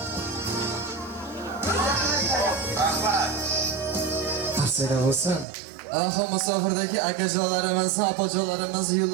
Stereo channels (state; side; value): drops out; left; at 5.5 s